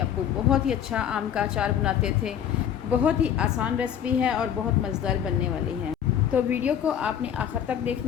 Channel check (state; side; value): quieter; right; 9.3 dB